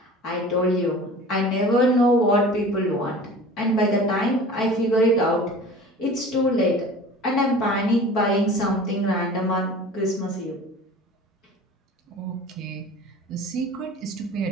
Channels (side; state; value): both; normal; correlation 0.41